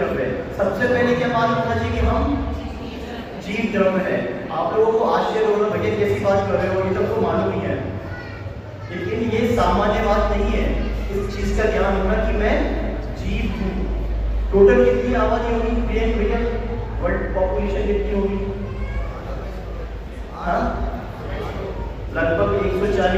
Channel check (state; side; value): identical; both; correlation 1.00